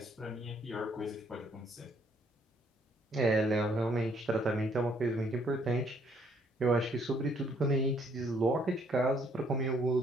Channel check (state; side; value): normal; both; correlation 0.67